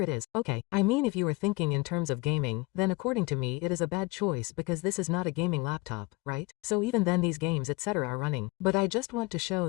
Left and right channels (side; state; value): right; quieter; 23.9 dB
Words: is. Okay, I mean if you were thinking in terms of gaming, then according to me it is a bad choice because this is not a gaming laptop, right? So even then these games etc. are running. But I just want to